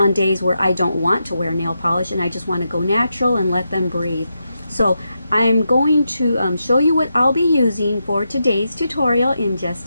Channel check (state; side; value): inverted; both; correlation -0.86